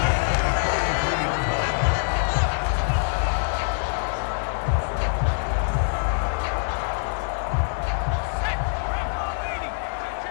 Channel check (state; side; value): silent; right; 59 dB below the other